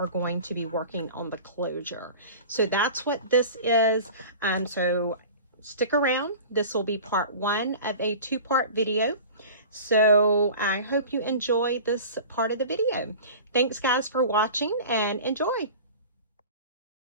going to be working on the closure. So that's what this is. So stick around. This will be part one of a two-part video. So I hope you enjoy this part of the video. Thanks guys for watching, and enjoy.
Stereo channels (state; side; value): inverted; both; correlation -0.38